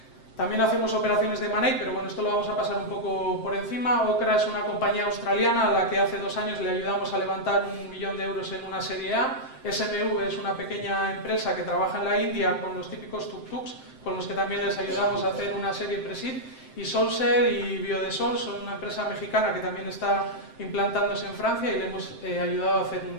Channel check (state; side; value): late; right; 7.7 ms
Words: También hacemos operaciones de money, pero bueno, esto lo vamos a pasar un poco por encima. Okra es una compañía australiana a la que hace 2 años le ayudamos a levantar 1 millón de euros en una serie A. SMV es una pequeña empresa que trabaja en la India con los típicos tuk-tuks, con los que también les ayudamos a hacer una serie Presid. Y Solser y Biodesol son una empresa mexicana que también está implantándose en Francia y le hemos ayudado a hacer